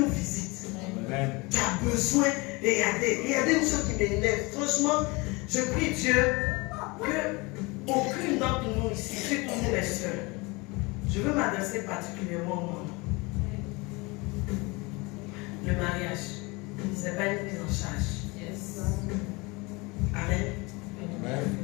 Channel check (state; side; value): quieter; right; 25.7 dB